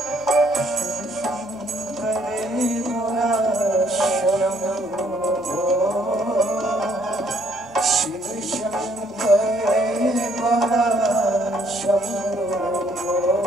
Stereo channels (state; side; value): normal; both; correlation 0.66